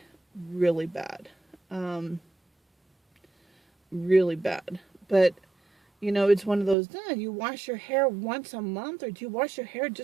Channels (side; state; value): left; drops out; at 6.8 s